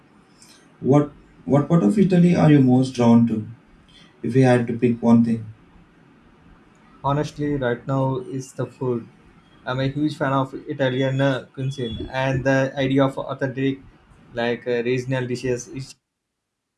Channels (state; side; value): identical; both; correlation 1.00